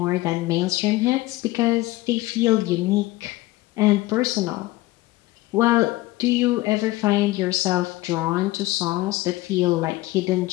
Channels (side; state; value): right; quieter; 18.6 dB